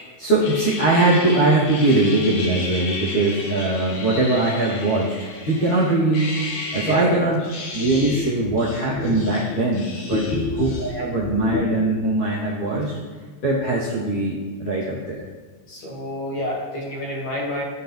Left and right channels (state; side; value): late; right; 12 ms